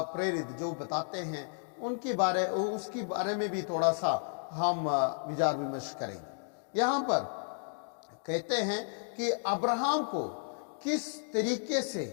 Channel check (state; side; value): silent; right; digital silence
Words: प्रेरित जो बताते हैं उसके बारे में भी थोड़ा सा हम विचार विमर्श करेंगे। यहाँ पर कहते हैं कि अब्राहम को किस तरीके से